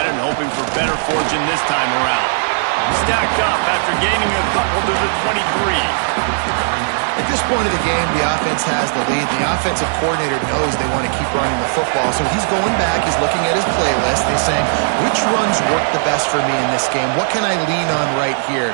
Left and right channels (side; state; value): left; silent; 68 dB below the other